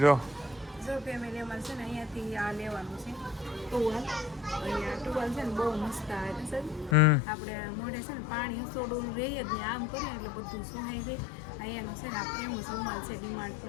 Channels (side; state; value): right; drops out; at 7.0 s